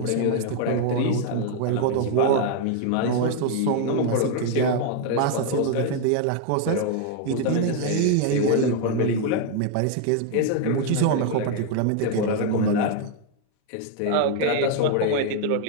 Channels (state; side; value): different; both; correlation 0.00